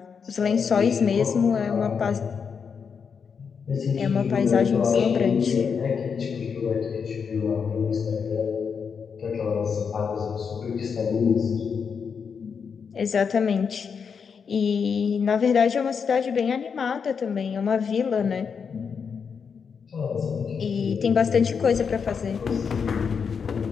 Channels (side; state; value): right; quieter; 6.2 dB